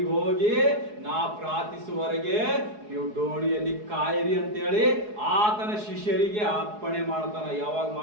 ಹೋಗಿ ನಾ ಪ್ರಾರ್ಥಿಸುವವರೆಗೆ ನೀವು ಡೋಣಿಯಲ್ಲಿ ಕಾಯಿರಿ ಅಂತೇಳಿ ಆತನ ಶಿಷ್ಯರಿಗೆ ಅಪ್ಪಣೆ ಮಾಡ್ತಾನ. ಯಾವಾಗ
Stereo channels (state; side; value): late; left; 4.7 ms